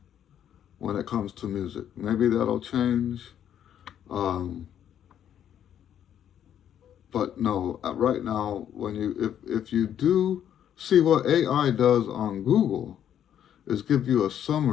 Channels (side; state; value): right; quieter; 9.9 dB